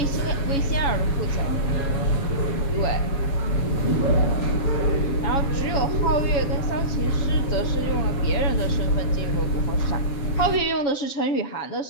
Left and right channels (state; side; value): late; right; 7.2 ms